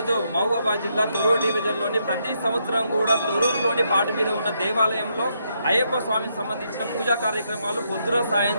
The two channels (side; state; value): both; inverted; correlation -0.77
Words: మహబూబాబాద్ జిల్లా తొర్రూరు డివిజన్లోని ప్రతి సంవత్సరం కూడా తొర్రూరులోని పాట మీద ఉన్న దేవాలయంలో అయ్యప్ప స్వామికి సంబంధించిన పూజా కార్యక్రమాలు పొద్దున